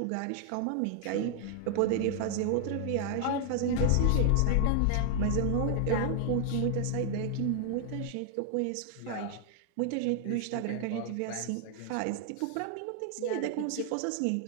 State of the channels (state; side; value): different; both; correlation 0.00